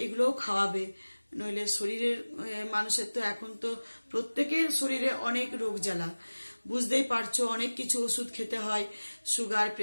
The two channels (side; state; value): both; inverted; correlation -1.00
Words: এগুলোও খাওয়াবে। নইলে শরীরের মানুষের তো এখন তো প্রত্যেকের শরীরে অনেক রোগ জ্বালা, বুঝতেই পারছো, অনেক কিছু ওষুধ খেতে হয়, সুগার